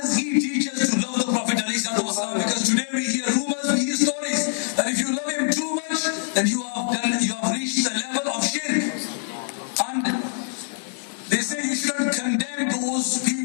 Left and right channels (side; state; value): right; silent; digital silence